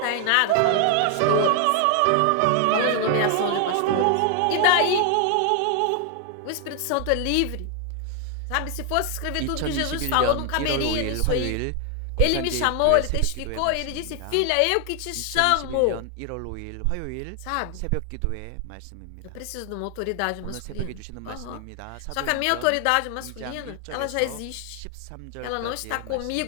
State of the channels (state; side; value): different; both; correlation 0.00